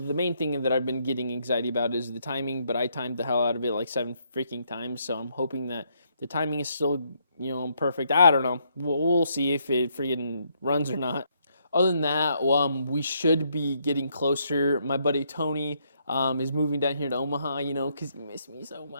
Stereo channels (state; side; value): inverted; both; correlation -0.73